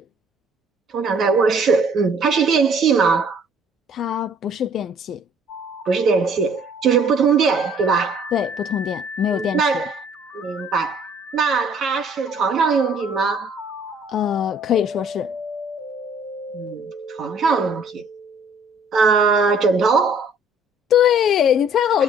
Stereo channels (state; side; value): normal; both; correlation 0.57